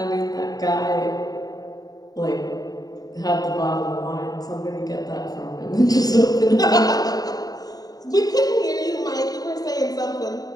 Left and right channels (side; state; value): right; late; 0.18 ms